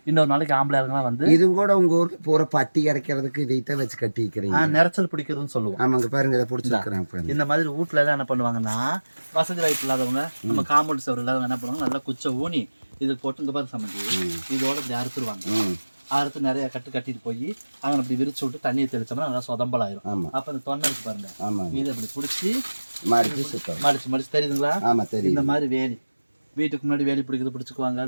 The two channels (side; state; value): both; inverted; correlation -1.00